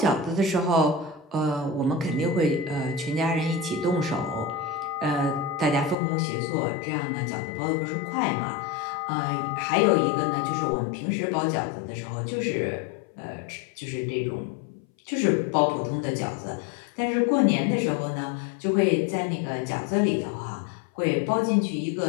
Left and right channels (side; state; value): right; drops out; at 6.0 s